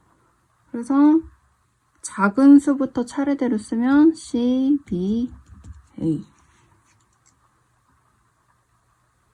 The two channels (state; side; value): identical; both; correlation 1.00